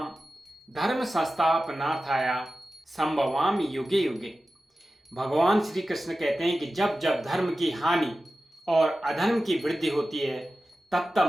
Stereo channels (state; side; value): normal; both; correlation 0.94